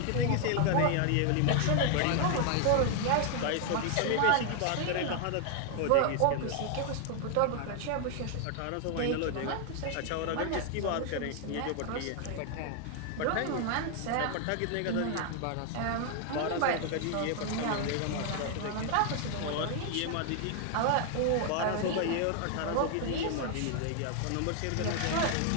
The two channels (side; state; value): both; different; correlation 0.00